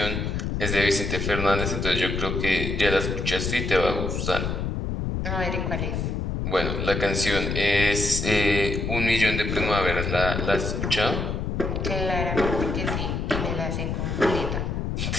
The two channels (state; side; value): noise; left; rumble, 2 dB below the sound